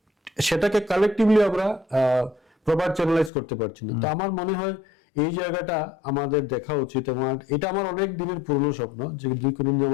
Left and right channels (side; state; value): right; drops out; at 3.3 s